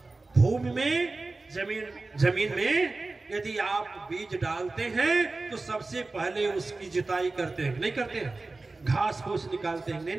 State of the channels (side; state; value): left; quieter; 3.4 dB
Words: भूमि में, जमीन में यदि आप बीज डालते हैं तो सबसे पहले उसकी जुताई करते हैं, नहीं करते हैं? घास फूस निकालते हैं, नहीं